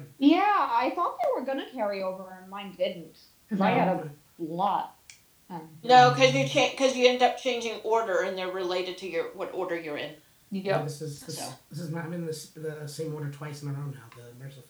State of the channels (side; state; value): both; identical; correlation 1.00